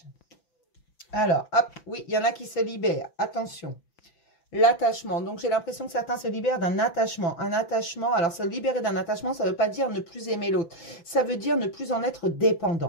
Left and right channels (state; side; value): late; right; 5.9 ms